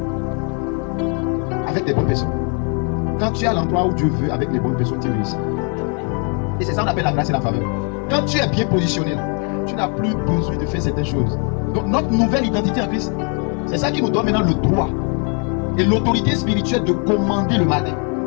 avec des bonnes personnes. Quand tu es à l'endroit où Dieu veut, avec les bonnes personnes, tu réussis. Et c'est ça qu'on appelle la grâce et la faveur. Quand tu es bien positionné, tu n'as plus besoin de faire certaines choses. Donc notre nouvelle identité en Christ, c'est ça qui nous donne maintenant le droit et l'autorité spirituelle de commander le matin.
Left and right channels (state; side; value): quieter; right; 38.6 dB